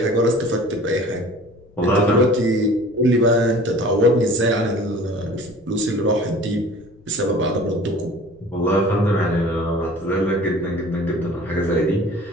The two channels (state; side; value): noise; left; rumble, 27 dB below the sound